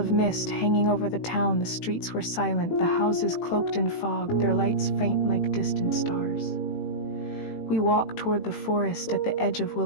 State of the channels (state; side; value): late; right; 18 ms